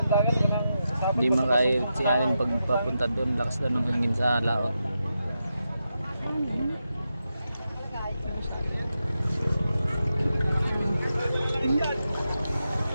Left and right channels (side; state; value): both; inverted; correlation -0.88